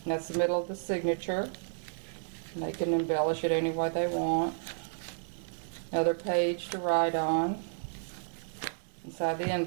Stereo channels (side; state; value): left; silent; digital silence